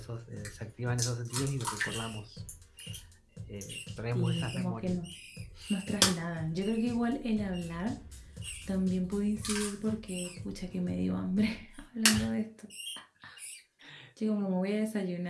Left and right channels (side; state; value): both; identical; correlation 1.00